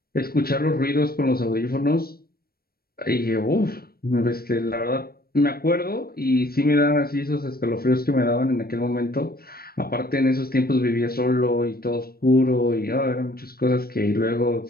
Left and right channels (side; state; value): right; late; 0.44 ms